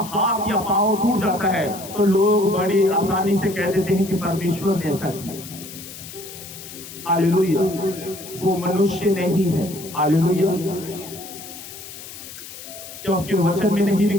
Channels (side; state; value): left; noise; hiss, 14 dB below the sound